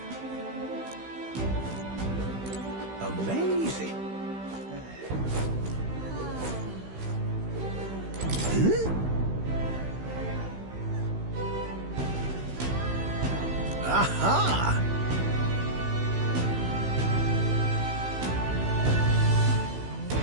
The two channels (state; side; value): late; left; 16 ms